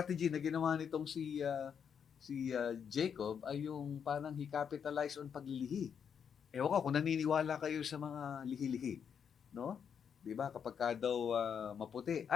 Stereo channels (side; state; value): right; quieter; 7.4 dB